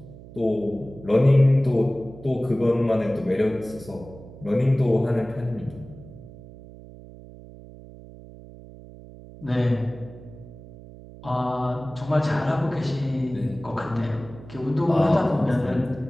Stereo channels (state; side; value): noise; right; hum, 18 dB below the sound